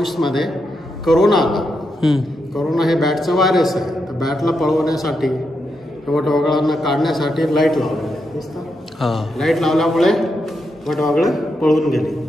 मध्ये करोना आला. करोना हे बॅटचं व्हायरस आहे. तर बॅटला पळवण्यासाठी वटवाघळांना काढण्यासाठी लाईट लावली. लाईट लावल्यामुळे वटवाघळं पळून गेली.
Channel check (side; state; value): both; normal; correlation 0.84